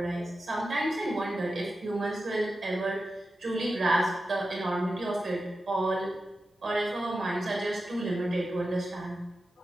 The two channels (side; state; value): both; normal; correlation 0.92